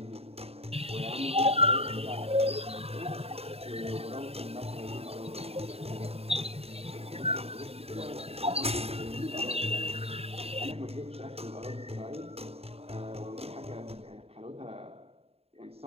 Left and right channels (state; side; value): late; left; 0.29 ms